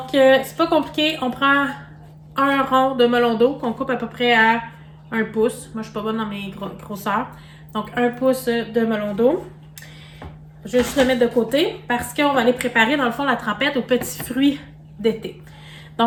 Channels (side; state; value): both; identical; correlation 1.00